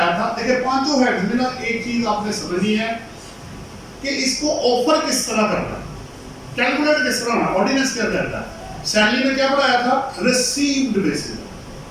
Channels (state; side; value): identical; both; correlation 1.00